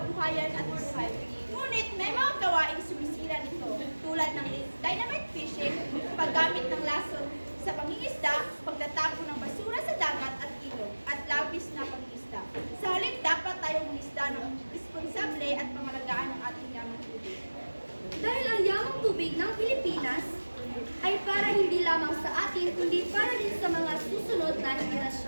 at buhay. Ngunit may mga gawaing sumisira nito tulad ng dynamite fishing, paggamit ng lason sa pangingisda, pagtatapon ng basura sa dagat at ilog, at labis na pangingisda. Sa halip, dapat tayong mangisda ng responsable at pangalagaan ng ating yamang tubig. Dahil ang yamang tubig ng Pilipinas ay para hindi lamang sa atin, kundi para din sa mga susunod na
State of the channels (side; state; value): both; inverted; correlation -1.00